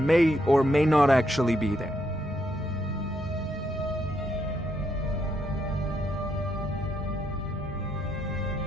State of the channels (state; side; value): normal; both; correlation 0.77